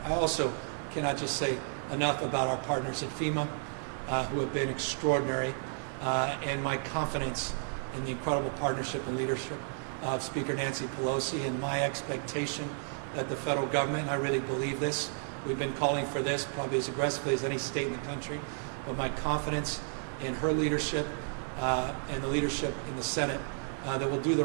I also cannot just say enough about our partners at FEMA who have been extraordinary and my confidence in the incredible partnership and leadership of Speaker Nancy Pelosi and my expectation that the federal government, and I really believe this, we've been calling for this probably as aggressively as any state in the country, but my confidence in her leadership and the leadership in the Senate that will do the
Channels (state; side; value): silent; left; 56 dB below the other